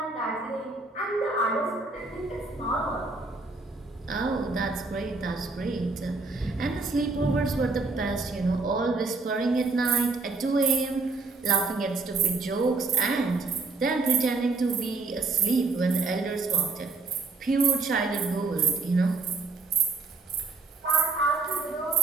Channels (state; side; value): quieter; left; 3.9 dB